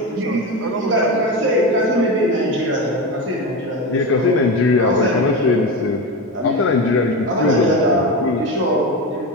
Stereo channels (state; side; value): normal; both; correlation 0.20